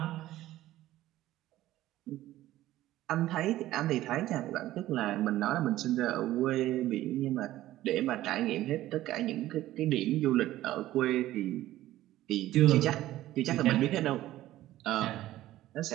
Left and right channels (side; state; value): left; quieter; 14.9 dB